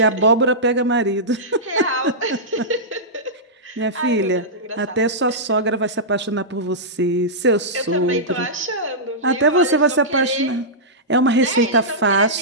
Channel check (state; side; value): normal; both; correlation -0.14